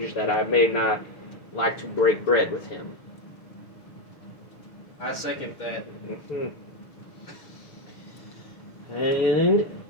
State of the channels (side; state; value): right; late; 6.6 ms